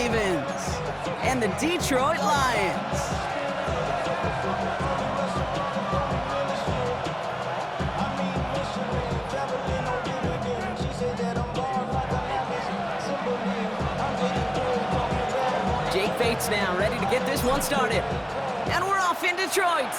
and the Detroit Lions. Fates now, ready to get this one started. And we're off in Detroit.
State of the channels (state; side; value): identical; both; correlation 1.00